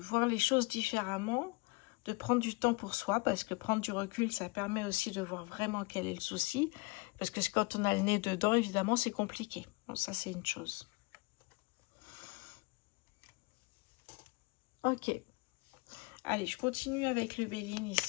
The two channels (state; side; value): quieter; right; 27.4 dB